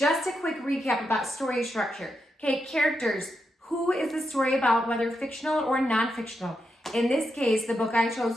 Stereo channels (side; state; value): both; normal; correlation 0.84